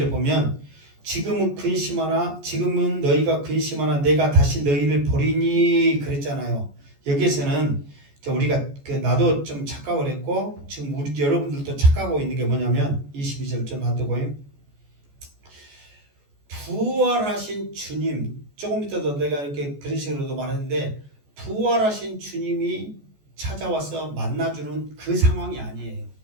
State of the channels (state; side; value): late; left; 14 ms